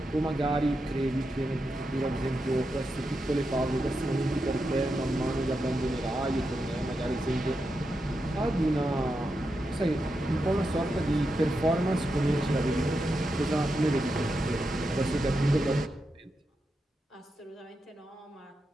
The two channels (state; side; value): normal; both; correlation 0.87